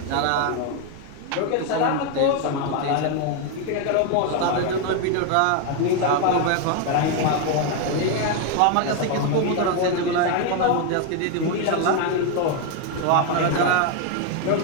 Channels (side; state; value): both; different; correlation 0.01